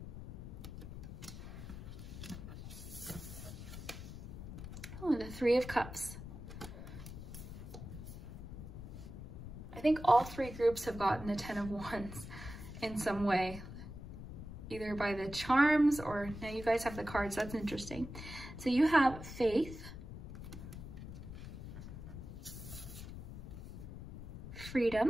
Oh, the 3 of Cups. I think all 3 groups have gotten the 10 of Wands. in some way, either by the charms or, now you guys have the cards, that's interesting. So you have faith,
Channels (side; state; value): left; noise; rumble, 10 dB below the sound